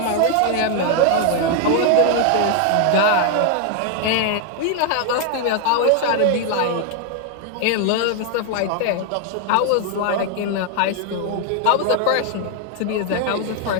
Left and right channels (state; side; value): different; both; correlation 0.00